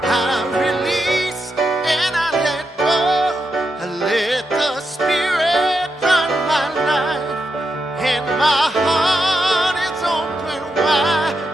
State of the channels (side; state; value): both; normal; correlation 0.85